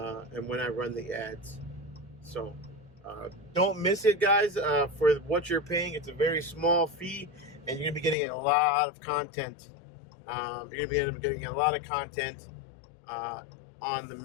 when I run the ads. So don't miss it, guys. For what you're paying, it's a very small fee, and you're gonna be getting a lot of content. You're gonna be getting a lot of content on the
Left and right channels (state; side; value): drops out; right; at 8.2 s